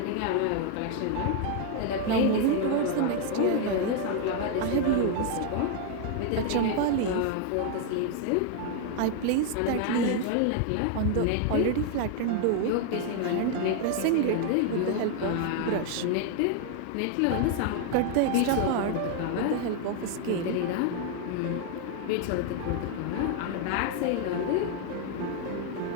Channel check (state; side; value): different; both; correlation 0.00